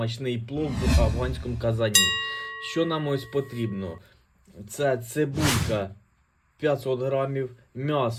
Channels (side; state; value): both; identical; correlation 1.00